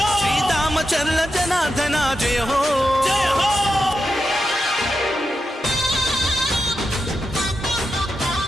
శ్రీదామచర్ల జనార్దన జయ హో.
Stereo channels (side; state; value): both; normal; correlation 0.88